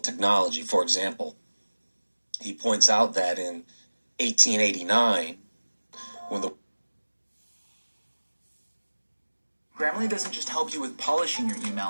For example, he points out that in 1889, when the Grammarly doesn't just help you with polishing your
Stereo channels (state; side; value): inverted; both; correlation -1.00